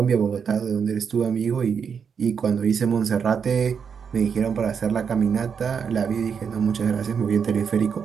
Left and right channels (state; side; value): quieter; left; 6.7 dB